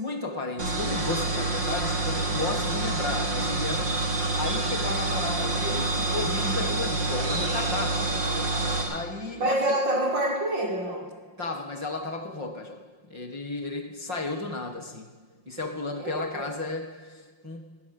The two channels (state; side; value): late; left; 5.6 ms